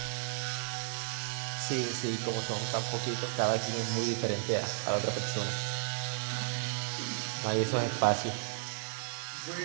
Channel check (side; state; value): left; silent; digital silence